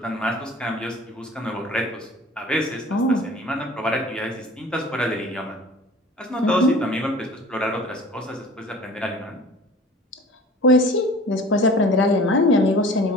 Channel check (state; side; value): normal; both; correlation 0.44